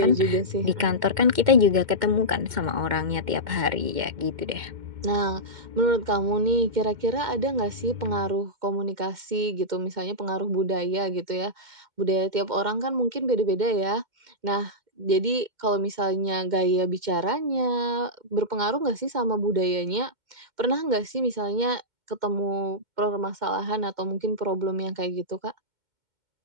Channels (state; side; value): late; left; 2.1 ms